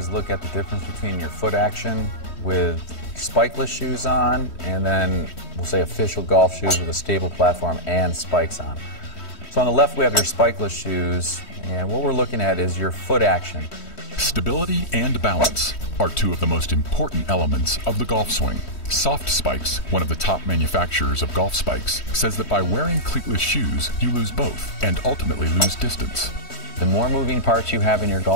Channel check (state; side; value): late; right; 3.1 ms